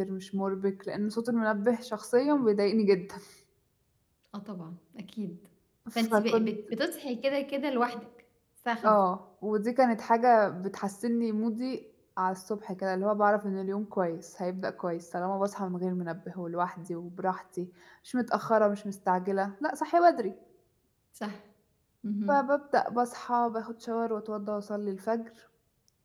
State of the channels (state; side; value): identical; both; correlation 1.00